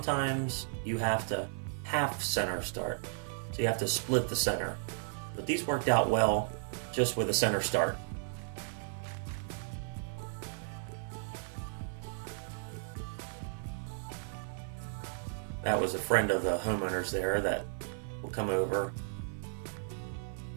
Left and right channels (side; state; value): left; silent; 55 dB below the other